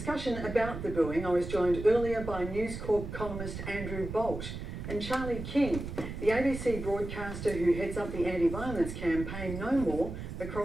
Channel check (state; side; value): noise; right; rumble, 8 dB below the sound